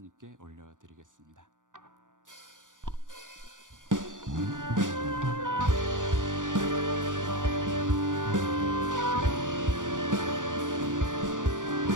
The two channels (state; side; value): late; left; 0.88 ms